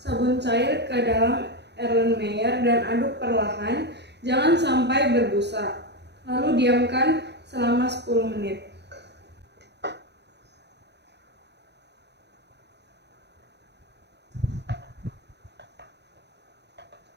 cair ke dalam Erlenmeyer dan aduk perlahan, jangan sampai berbusa. Lalu diamkan selama 10 menit.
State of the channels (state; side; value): late; left; 0.50 ms